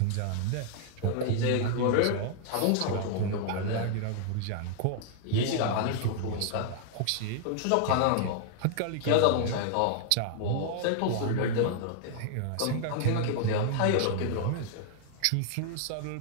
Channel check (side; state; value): both; different; correlation -0.01